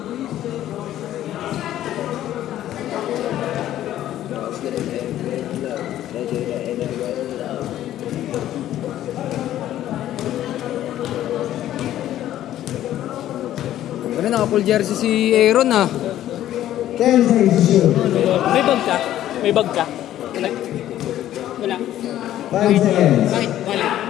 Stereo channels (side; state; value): right; quieter; 12.7 dB